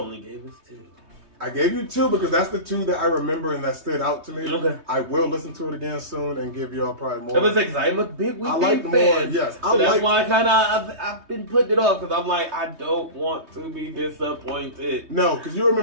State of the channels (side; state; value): left; late; 3.2 ms